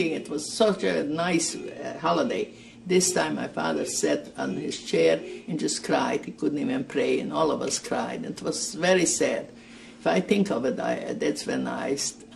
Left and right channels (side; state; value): both; identical; correlation 1.00